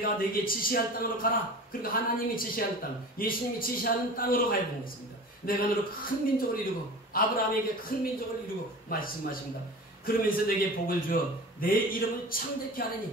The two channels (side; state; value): both; normal; correlation 0.36